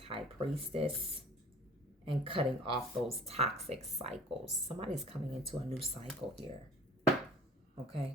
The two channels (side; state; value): both; normal; correlation 0.47